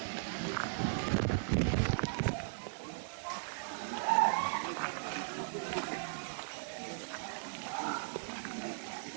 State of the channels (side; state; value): left; silent; digital silence